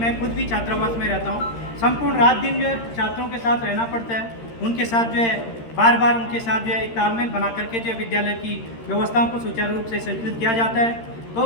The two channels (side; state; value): right; late; 13 ms